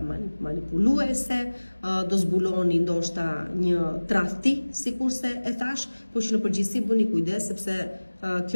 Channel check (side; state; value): both; inverted; correlation -1.00